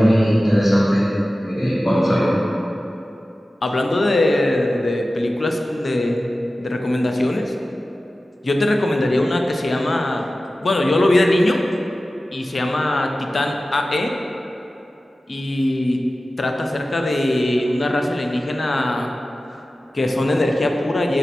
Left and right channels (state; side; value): normal; both; correlation 0.95